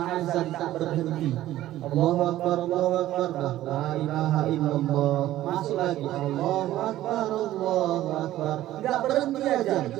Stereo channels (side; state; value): left; quieter; 14.3 dB